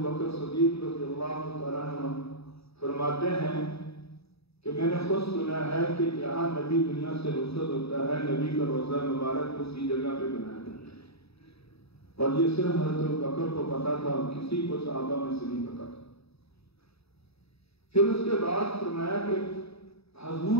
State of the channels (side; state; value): right; late; 0.78 ms